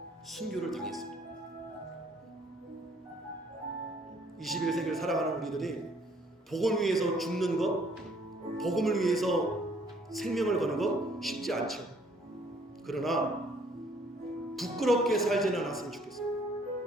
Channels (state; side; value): normal; both; correlation 0.62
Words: 순교를 당했습니다. 21세기를 살아가는 우리들이 복음을 위해서 죽는 것, 복음을 위해서 생명을 거는 것 쉽지 않죠. 그러나 부끄럽게 살지는 않았으면